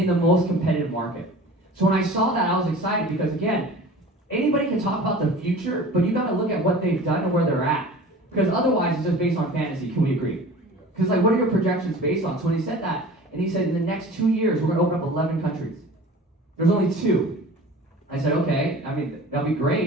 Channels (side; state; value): both; normal; correlation 0.40